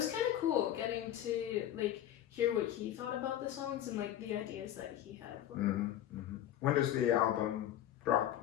kind of cool getting to like hear what he thought about the songs and like the ideas that he had. When does the album drop?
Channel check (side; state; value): right; quieter; 11.7 dB